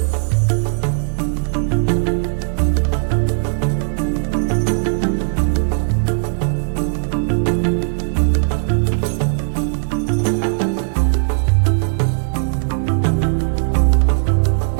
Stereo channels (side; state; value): left; silent; digital silence